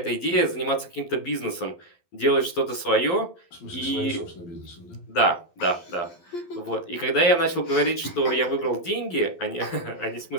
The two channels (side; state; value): right; late; 12 ms